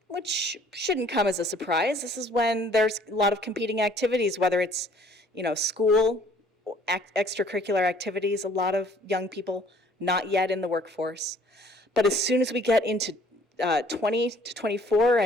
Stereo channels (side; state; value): both; normal; correlation 0.57